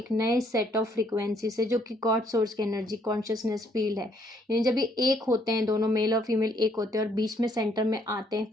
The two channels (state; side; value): normal; both; correlation 0.68